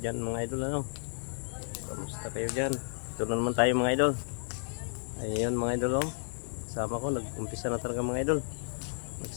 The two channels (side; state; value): right; silent; 56 dB below the other